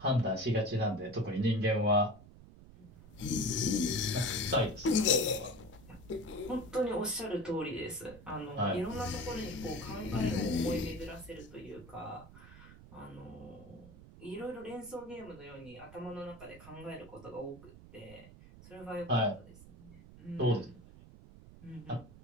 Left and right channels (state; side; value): noise; right; rumble, 19 dB below the sound